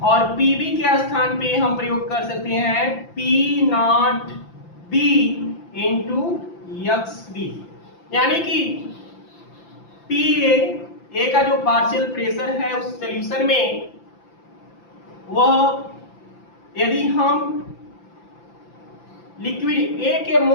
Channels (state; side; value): late; right; 5.9 ms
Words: और PB के स्थान पे हम प्रयोग कर सकते हैं P not B into XB। यानी कि PA का जो पार्शियल प्रेशर है उस सॉल्यूशन में, वह यदि हम लिक्विड ए के